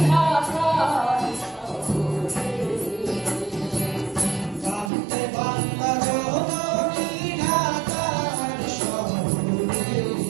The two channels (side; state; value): left; drops out; at 4.9 s